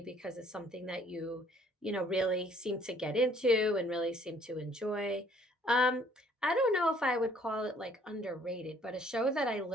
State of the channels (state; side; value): normal; both; correlation 0.60